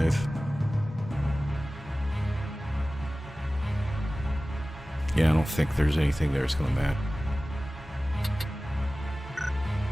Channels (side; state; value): both; normal; correlation 0.97